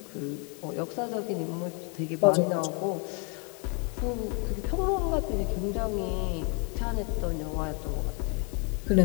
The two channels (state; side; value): quieter; right; 36.0 dB